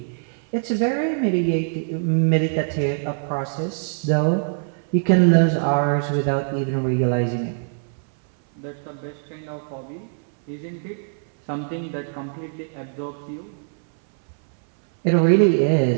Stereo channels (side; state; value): left; silent; 59 dB below the other